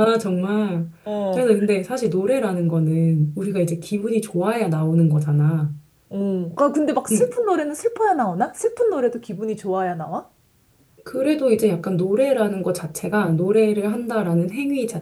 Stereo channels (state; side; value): identical; both; correlation 1.00